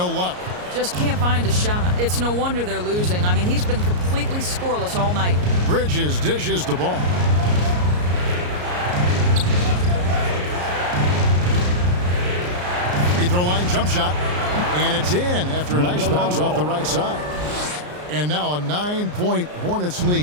luck. Just can't find a shot. It's no wonder they're losing. I mean, he's been completely scoreless all night. Bridges dishes the ball. Free throw line jump shot. And it's in after a nice bounce off the right side. And now a 9-point Hornets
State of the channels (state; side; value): late; left; 34 ms